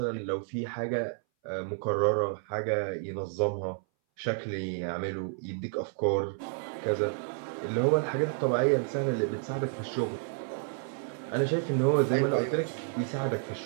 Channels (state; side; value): silent; left; 58 dB below the other